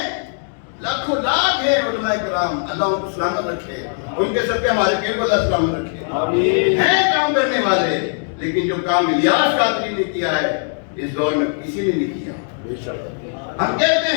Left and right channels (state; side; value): silent; right; 66 dB below the other